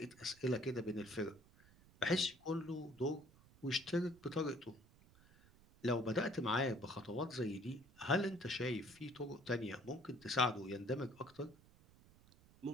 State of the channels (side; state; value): right; noise; rumble, 25 dB below the sound